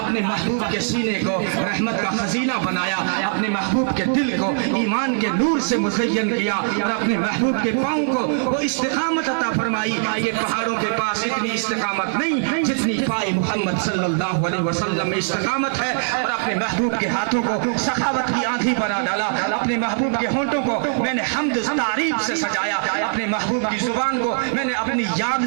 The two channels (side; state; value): left; silent; 57 dB below the other